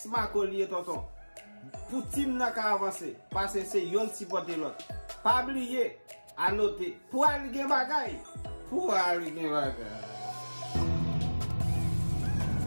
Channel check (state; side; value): inverted; both; correlation -1.00